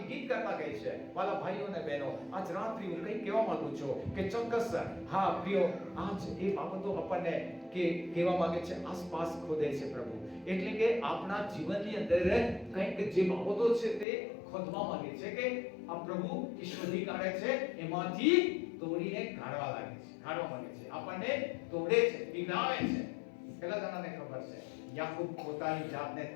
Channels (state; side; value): drops out; right; at 14.1 s